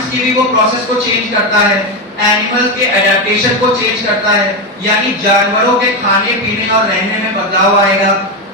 की भी वो प्रोसेस को चेंज करता है, एनिमल के एडेप्टेशन को चेंज करता है, यानी जानवरों के खाने पीने और रहने में बदलाव आएगा,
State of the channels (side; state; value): both; normal; correlation 0.11